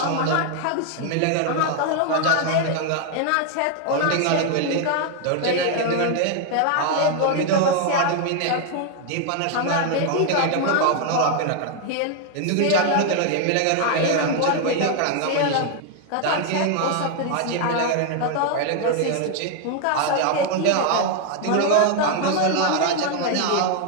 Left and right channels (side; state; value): both; different; correlation 0.00